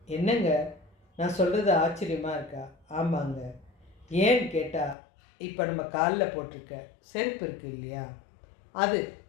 என்னங்க நான் சொல்கிறது ஆச்சரியமாக இருக்கா? ஆமாங்க. ஏன்னு கேட்டால், இப்போ நம்ம காலில் போட்டிருக்க செருப்பு இருக்குது இல்லையா, அது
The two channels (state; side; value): drops out; right; at 5.0 s